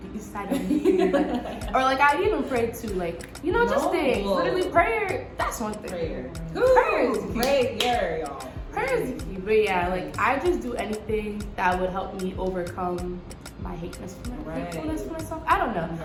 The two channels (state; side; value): identical; both; correlation 1.00